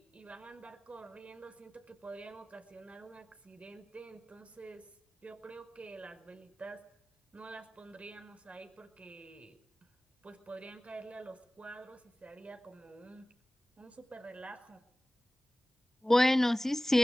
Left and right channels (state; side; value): normal; both; correlation 0.98